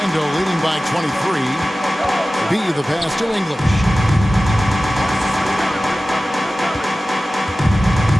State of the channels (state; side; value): normal; both; correlation 0.96